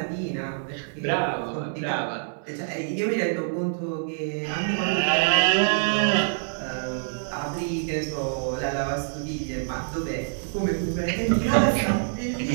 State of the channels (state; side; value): silent; left; digital silence